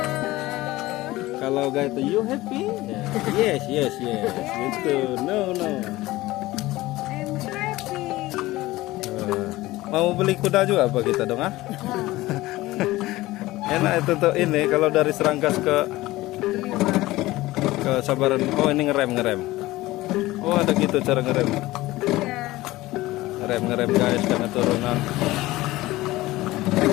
Kalau guys itu you happy? Yes. Gitu. No. I'm happy. Mau beli kuda juga apa kita dong ah? Enak itu tuh ini kalau dari Serangkas ke Sabaran. Oh ini ngerem. Oh ada gitu cara ngerem. Ngerem guys karena turunan.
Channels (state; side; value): quieter; right; 18.3 dB